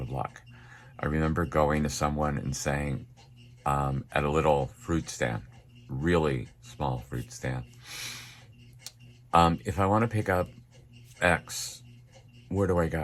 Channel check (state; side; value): identical; both; correlation 1.00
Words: of luck. I remember going to someone and saying, at a little fruit stand, really small fruit stand, if I want to pick up X, where do I